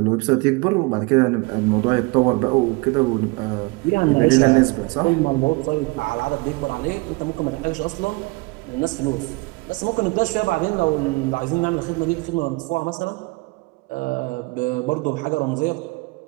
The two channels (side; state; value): left; quieter; 25.7 dB